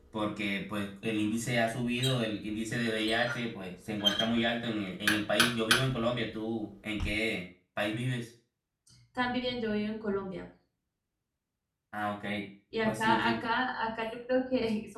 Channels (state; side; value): identical; both; correlation 1.00